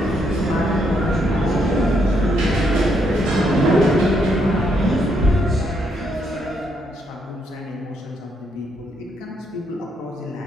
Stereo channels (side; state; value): both; normal; correlation 0.75